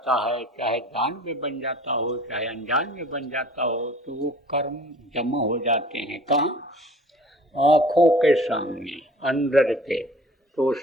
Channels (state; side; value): normal; both; correlation 0.48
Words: है, चाहे जान में बन जाता हो चाहे अनजान में बन जाता हो, तो वो कर्म जमा हो जाते हैं कहाँ? आँखों के सामने अंदर के, तो